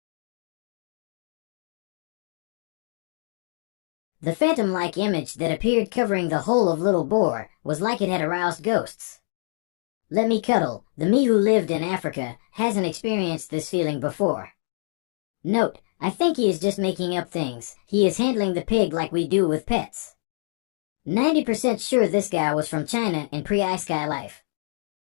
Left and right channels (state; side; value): silent; right; digital silence